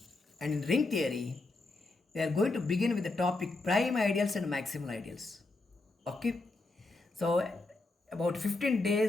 And in ring theory, we are going to begin with the topic prime ideals and maximal ideals. Okay? So about 15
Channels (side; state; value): right; quieter; 3.2 dB